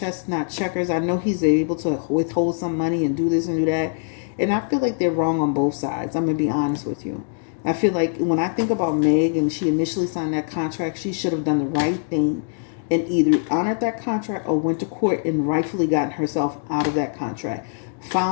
not checkers. I know he's able to withhold some money and do this and do that. And I feel like they're wrong on both sides. I'm going to be honest with you. I feel like when I think about Meg and she initially signed that contract, she should have done the right thing and either honored that contract or went to court and rightfully gotten herself out of that contract.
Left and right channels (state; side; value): silent; right; digital silence